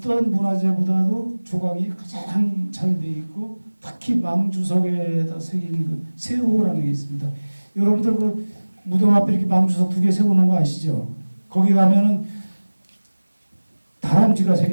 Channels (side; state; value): both; inverted; correlation -1.00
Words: 문화재보다도 조각이 가장 잘 돼 있고 특히 망주석에다 새긴 그 세호라는 게 있습니다. 여러분들 그 무덤 앞에 이렇게 망주석 2개 세워놓은 거 아시죠? 거기 가면은 다람쥐가